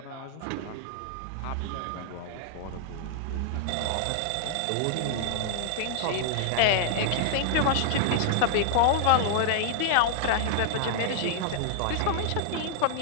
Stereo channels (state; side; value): different; both; correlation -0.01